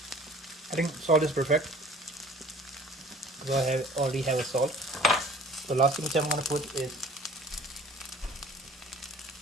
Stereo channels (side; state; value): both; normal; correlation 0.50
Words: I think salt is perfect. So I already have a salt. The last thing which I'm going to put is